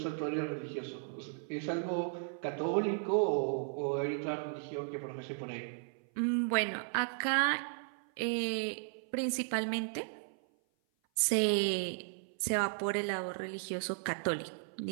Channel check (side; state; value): left; silent; 54 dB below the other